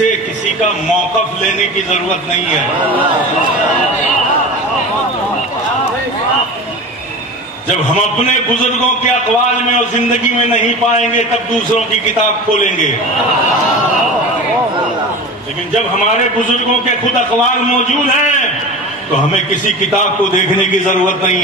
کسی کا موقف لینے کی ضرورت نہیں ہے. جب ہم اپنے بزرگوں کے اقوال میں اور زندگی میں نہیں پائیں گے تب دوسروں کی کتاب کھولیں گے. لیکن جب ہمارے بزرگوں کے خود اقوال موجود ہیں تو ہمیں کسی کتاب کو دیکھنے کی ضرورت نہیں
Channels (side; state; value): both; normal; correlation 0.32